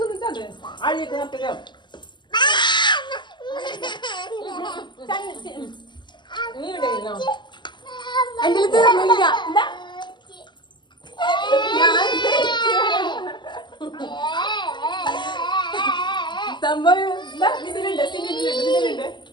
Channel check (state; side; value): late; right; 0.22 ms